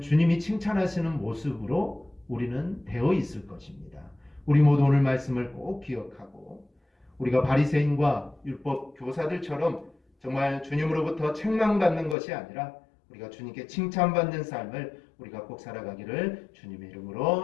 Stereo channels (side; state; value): right; drops out; at 12.2 s